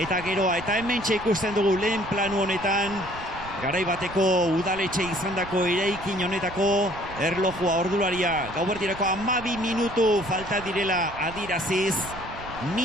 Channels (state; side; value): noise; right; rumble, 14 dB below the sound